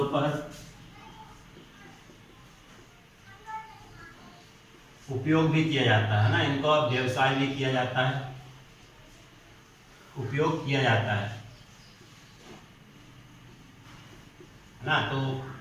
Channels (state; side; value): identical; both; correlation 1.00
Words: उपयोग भी किया जाता है ना। इनका व्यवसाय भी किया जाता है, उपयोग किया जाता है ना। तो